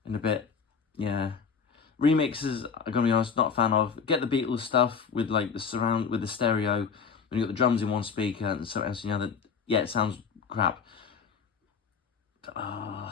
Yeah. Remixes, I'm gonna be honest, not a fan of. Get the Beatles stuff with like the surround with the stereo, when you got the drums in one speaker and something else in the other. Yeah, it sounds crap.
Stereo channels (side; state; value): right; quieter; 6.2 dB